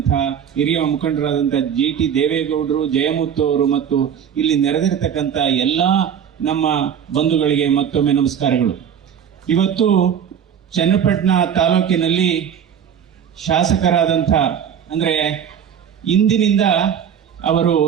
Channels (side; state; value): left; quieter; 8.4 dB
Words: ಹಿರಿಯ ಮುಖಂಡರಾದಂಥ GT ದೇವೇಗೌಡರು, ಜಯಮುತ್ತು ಅವರು ಮತ್ತು ಇಲ್ಲಿ ನೆರೆದಿರತಕ್ಕಂಥ ಎಲ್ಲ ನಮ್ಮ ಬಂಧುಗಳಿಗೆ ಮತ್ತೊಮ್ಮೆ ನಮಸ್ಕಾರಗಳು. ಇವತ್ತು ಚನ್ನಪಟ್ಟಣ ತಾಲೂಕಿನಲ್ಲಿ ಶಾಸಕರಾದಂಥ ಅಂದರೆ ಇಂದಿನಿಂದ ಅವರು